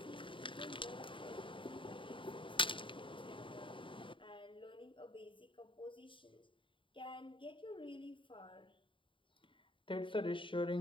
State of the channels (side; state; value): right; late; 0.25 ms